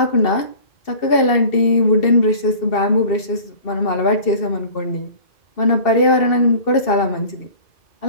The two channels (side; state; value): right; late; 2.7 ms